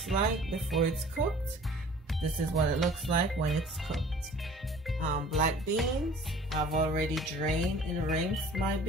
like before it's cooked. This is what it looks like when it's cooked. Black beans. I've already drained and rinsed my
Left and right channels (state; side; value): normal; both; correlation 0.48